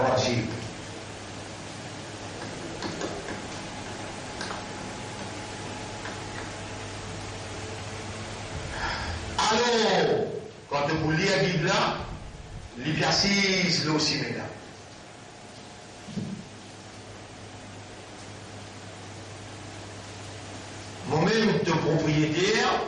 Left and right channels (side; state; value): both; identical; correlation 1.00